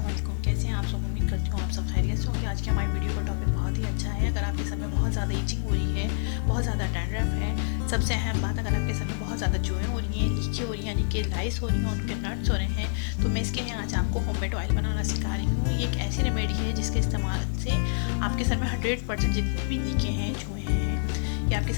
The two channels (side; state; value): right; silent; digital silence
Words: वालेकुम। कैसे हैं आप सब? उम्मीद करती हूँ आप सब खैरियत से होंगे। आज के हमारी वीडियो का टॉपिक बहुत ही अच्छा है। अगर आपके सर में बहुत ज़्यादा ईचिंग हो रही है, बहुत ज़्यादा डैंड्रफ है, सबसे अहम बात, अगर आपके सर में बहुत ज़्यादा जुएँ हो रही हैं, लीकें हो रही हैं, यानी कि लाइस हो रही हैं, उनके नट्स हो रहे हैं, तो मैं इसके लिए आज आपको होममेड ऑयल बनाना सिखा रही हूँ। ये एक ऐसी रेमेडी है जिसके इस्तेमाल से आपके सर में 100% जितनी भी लीकें हैं, जुएँ हैं, या आपके